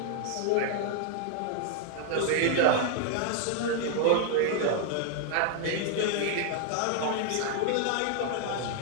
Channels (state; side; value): different; both; correlation 0.00